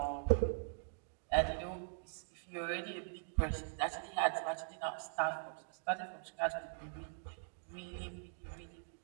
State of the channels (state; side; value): silent; left; digital silence